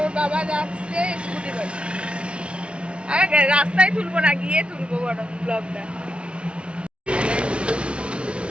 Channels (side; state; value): left; late; 0.059 ms